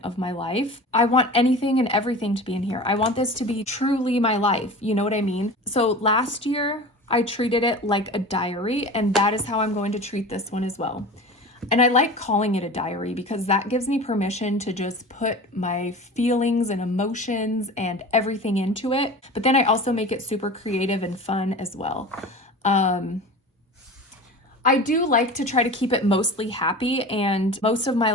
of my life. I want anything and everything to be in here. I want this to be truly my life. You know what I mean? So last year I treated it like a diary, and that is how I'm going to treat this one as well. And I like calling it a diary because that gives me permission to just put my feelings and emotions and everything into it. But then I also make it super creative and fun as well. I do like to try to keep it mostly happy, and most of my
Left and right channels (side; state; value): both; normal; correlation 0.35